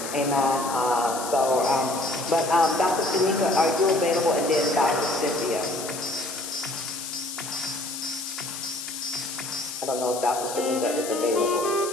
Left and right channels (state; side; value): noise; left; hiss, 8 dB below the sound